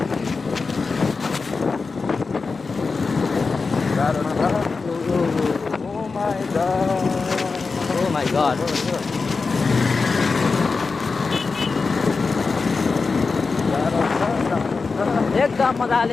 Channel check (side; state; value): right; quieter; 4.4 dB